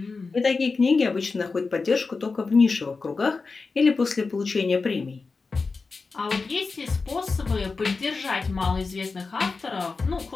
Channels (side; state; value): right; quieter; 4.3 dB